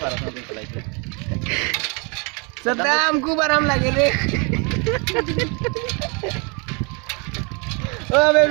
সারা সারা দিন চালাইতে सदा हमको आराम लगे रे ओ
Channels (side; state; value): left; quieter; 32.8 dB